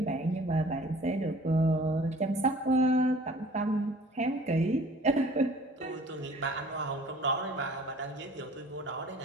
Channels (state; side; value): normal; both; correlation 0.50